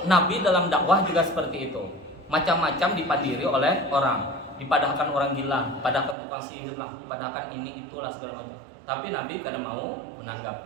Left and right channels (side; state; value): left; drops out; at 6.2 s